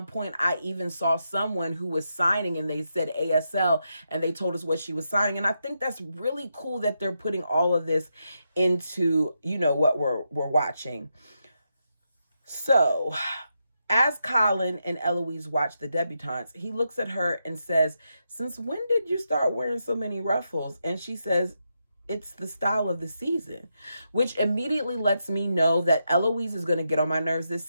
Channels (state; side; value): inverted; both; correlation -0.84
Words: point, I even saw someone who was signing and they said ASL and they told us what she was signing. And I think that's really cool that they're putting all of this into, what we're watching. So as Colin and Eloise watch the debutantes, he looks at her and says, since when did you start wearing so many ruffles? And she says, it's the style of the season, which immediately lets me know that Eloise is going to get on my nerves this